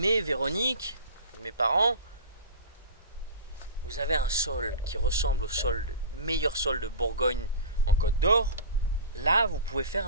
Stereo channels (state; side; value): inverted; both; correlation -0.33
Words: Véronique, mes parents, vous avez un sol qui ressemble au meilleur sol de Bourgogne en Côte d'Or. Là, vous pouvez faire